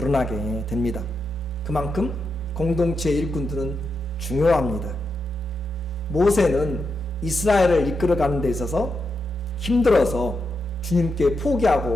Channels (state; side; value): normal; both; correlation 0.85